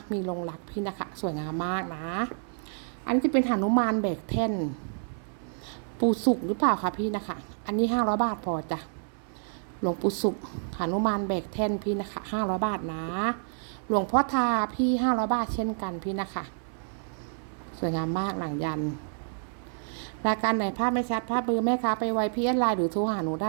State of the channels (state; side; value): silent; left; digital silence